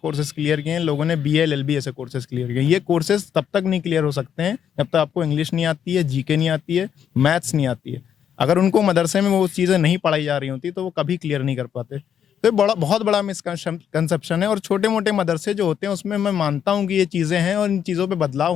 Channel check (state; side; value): quieter; right; 8.7 dB